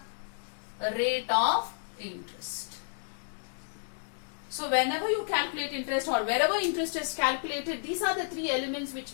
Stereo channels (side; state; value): right; silent; digital silence